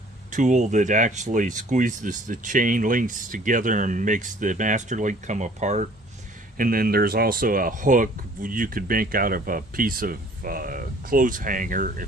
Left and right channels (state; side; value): normal; both; correlation 0.54